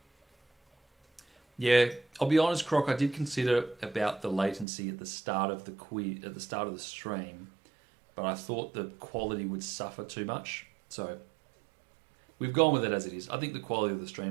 Yeah, I'll be honest, Croc, I did consider about the latency at the start of the quiz, at the start of the stream, but I thought the quality would suffer too much. So we've gone with it as it is. I think the quality of the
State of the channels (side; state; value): left; drops out; at 4.7 s